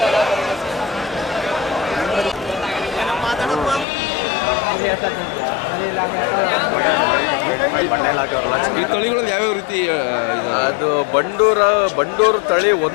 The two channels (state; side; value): drops out; right; at 3.9 s